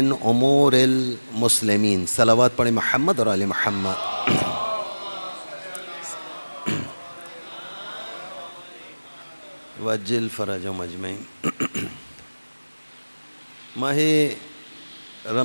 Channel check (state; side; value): inverted; both; correlation -1.00